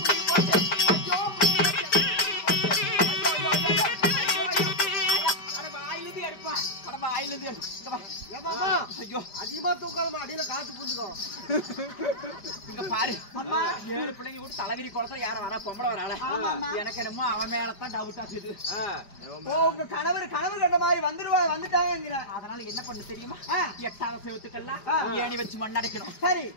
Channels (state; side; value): late; right; 5.1 ms